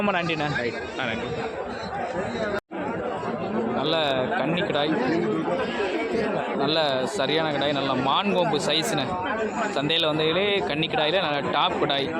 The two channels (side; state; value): both; identical; correlation 1.00